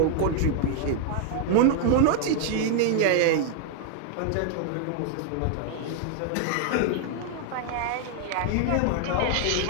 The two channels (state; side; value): different; both; correlation 0.00